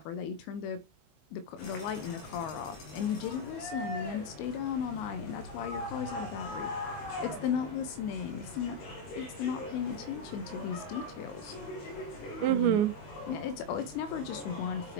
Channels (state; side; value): late; right; 19 ms